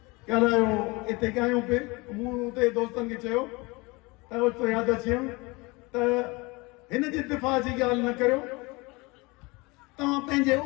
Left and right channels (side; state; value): right; quieter; 25.1 dB